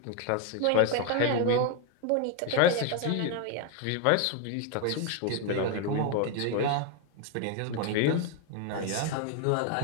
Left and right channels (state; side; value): different; both; correlation 0.01